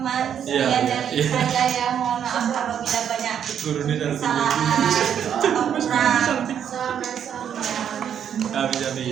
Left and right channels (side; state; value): left; quieter; 8.8 dB